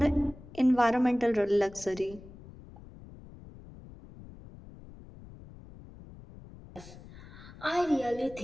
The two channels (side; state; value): left; noise; rumble, 18 dB below the sound